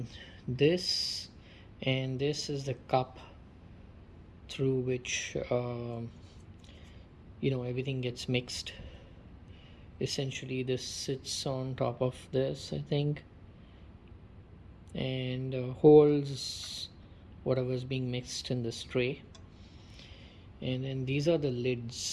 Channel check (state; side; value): identical; both; correlation 1.00